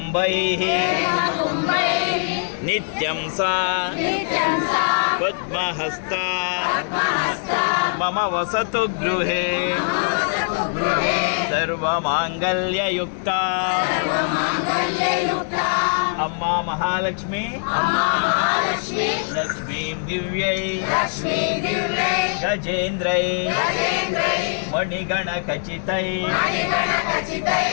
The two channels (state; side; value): silent; right; digital silence